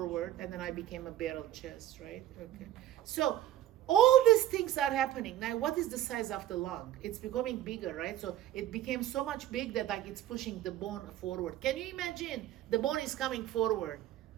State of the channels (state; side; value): quieter; left; 12.7 dB